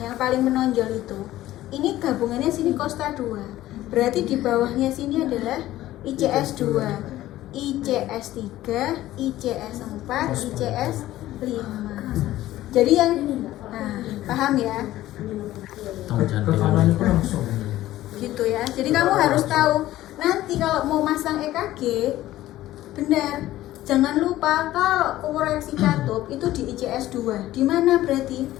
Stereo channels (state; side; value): quieter; right; 15.0 dB